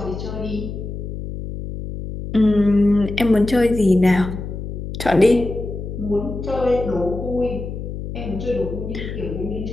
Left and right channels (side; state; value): left; noise; hum, 7 dB below the sound